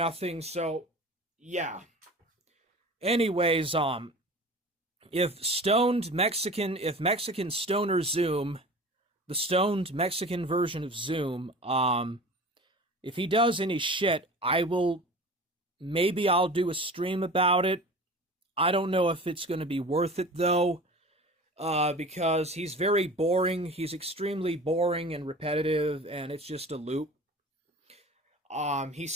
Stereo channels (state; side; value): normal; both; correlation 0.38